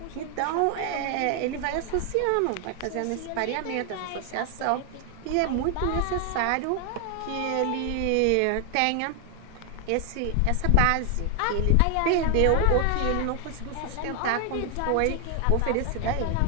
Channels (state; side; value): different; both; correlation 0.00